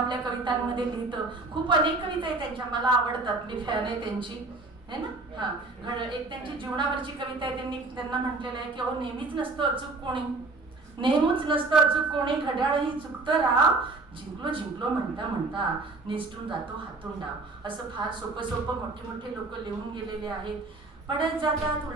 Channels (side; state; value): left; quieter; 3.5 dB